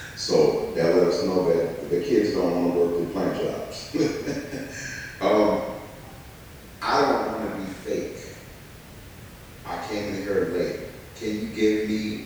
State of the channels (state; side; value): identical; both; correlation 1.00